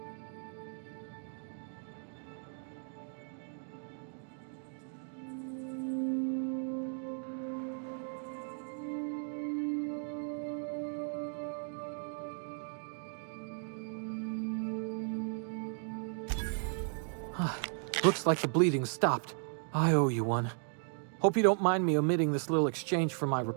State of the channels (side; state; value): left; silent; 54 dB below the other